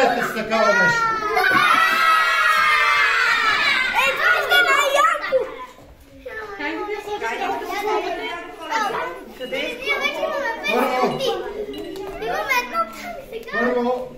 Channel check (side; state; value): both; identical; correlation 1.00